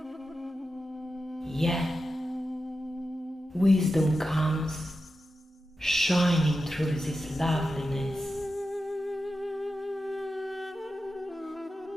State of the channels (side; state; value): both; normal; correlation 0.91